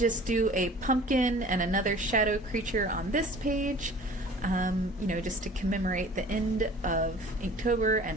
do a pumpkin and another shadow creature on this page, just to commemorate the end of Inktober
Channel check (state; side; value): normal; both; correlation 0.46